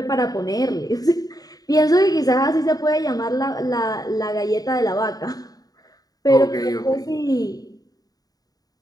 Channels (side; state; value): right; late; 0.18 ms